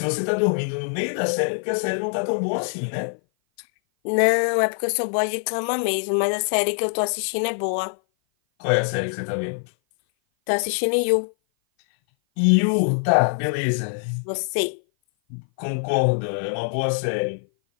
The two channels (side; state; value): right; silent; 57 dB below the other